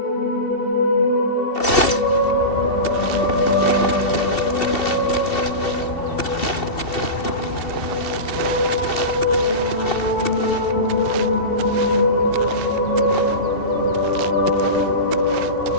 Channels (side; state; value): right; late; 2.7 ms